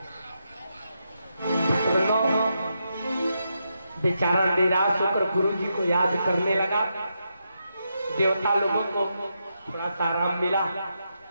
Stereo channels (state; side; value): inverted; both; correlation -0.83